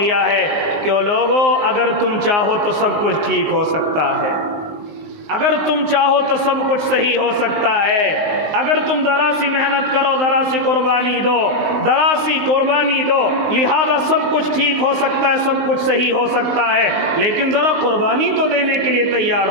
ہے کہ او لوگو، اگر تم چاہو تو سب کچھ ٹھیک ہو سکتا ہے، اگر تم چاہو تو سب کچھ صحیح ہو سکتا ہے، اگر تم ذرا سی محنت کرو، ذرا سی قربانی دو، ذرا سی قربانی دو، لہذا سب کچھ ٹھیک ہو سکتا ہے، سب کچھ صحیح ہو سکتا ہے، لیکن ذرا قربانی تو دینے کے لیے تیار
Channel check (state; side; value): late; left; 19 ms